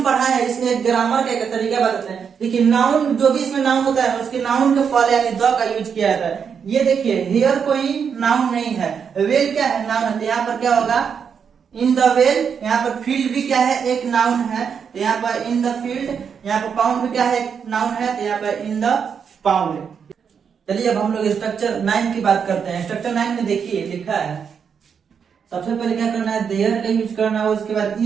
पढ़ा है इसमें एक ग्रामर का एक तरीका बताते हैं। देखिए नाउन, जो भी इसमें नाउन होता है उसके नाउन के पहले यानी द का यूज किया जाता है। ये देखिए हेयर कोई नाउन नहीं है, वेल क्या है, नाउन है। तो यहाँ पर क्या होगा, इन द वेल, यहाँ पर फील्ड भी क्या है, एक नाउन है, तो यहाँ पर इन द फील्ड। यहाँ पर पाउंड भी क्या है, एक नाउन है, तो यहाँ पर इन द पाउंड। चलिए अब हम लोग स्ट्रक्चर 9 की बात करते हैं। स्ट्रक्चर 9 में देखिए लिखा है, सबसे पहले क्या करना है, देयर का यूज करना है, उसके बाद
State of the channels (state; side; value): quieter; left; 6.9 dB